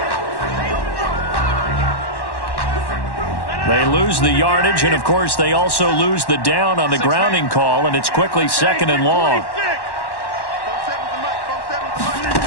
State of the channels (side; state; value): right; late; 1.1 ms